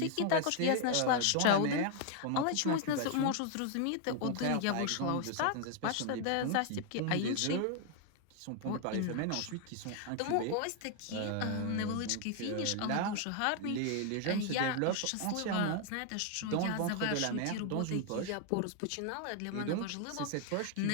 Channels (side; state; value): both; different; correlation 0.00